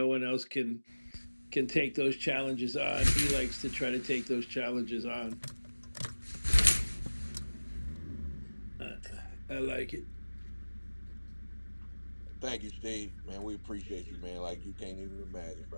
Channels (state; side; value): inverted; both; correlation -1.00